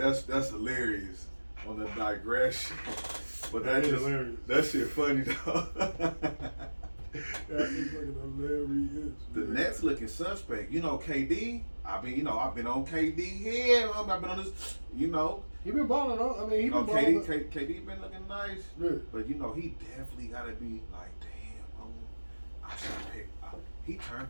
that's hilarious on the digression. But That is just hilarious. that shit funny though. That is fucking hilarious. The Nets looking suspect. You know, KD. I've been on KD here. I've been on this. You know, He been balling on. I mean, he been KD balling. KD been looking nice. Yeah. But you know, he definitely gotta be like, damn, I should pick. He turned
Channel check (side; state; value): both; inverted; correlation -1.00